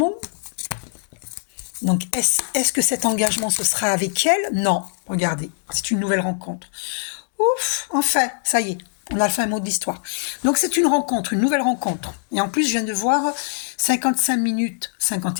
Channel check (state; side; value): silent; right; digital silence